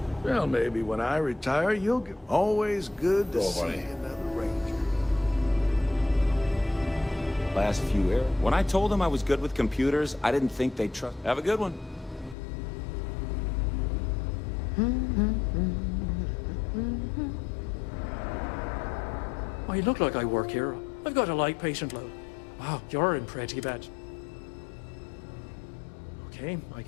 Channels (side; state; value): right; drops out; at 12.4 s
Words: Well, maybe when I retire, you'll get always good to Oh, see buddy. another Ranger. Last few years. When I told them I was good with computers, I didn't think they'd trust. Have a good one. I look like I work here. I've got a light patient load. Wow, you're in pretty bad. Okay, I